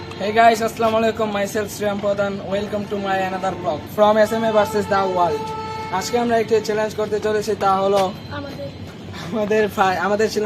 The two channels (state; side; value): identical; both; correlation 1.00